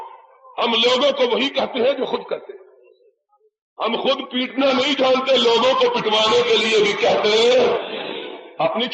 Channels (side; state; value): both; identical; correlation 1.00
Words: ہم لوگوں کو وہی کہتے ہیں جو خود کرتے ہیں، ہم خود پیٹنا نہیں جانتے، لوگوں کو پٹوانے کے لیے بھی کہتے ہیں۔ اپنی